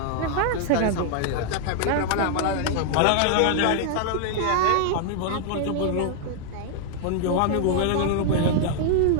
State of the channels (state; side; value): different; both; correlation 0.00